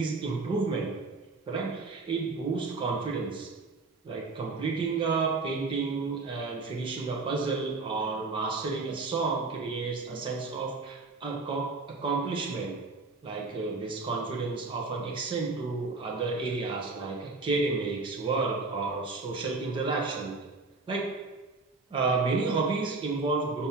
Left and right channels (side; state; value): left; quieter; 3.7 dB